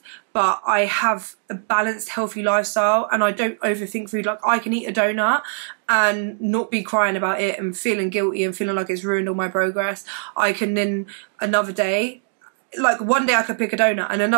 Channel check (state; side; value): silent; left; digital silence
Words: but I have a balanced, healthy lifestyle, and I don't overthink food. Like I can eat a donut and not be crying about it and feeling guilty and feeling like it's ruined all my progress. I can then another day, like one day I could pick a donut and